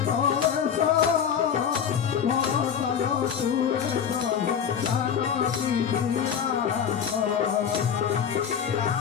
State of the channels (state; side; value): quieter; right; 7.9 dB